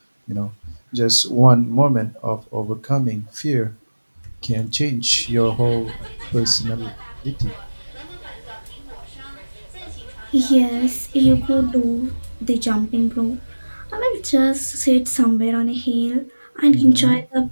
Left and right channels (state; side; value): inverted; both; correlation -1.00